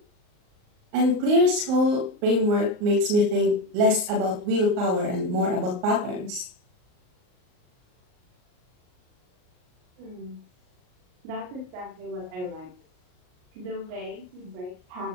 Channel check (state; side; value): late; left; 38 ms